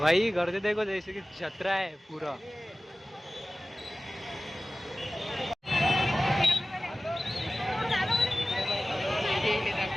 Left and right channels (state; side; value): normal; both; correlation 0.97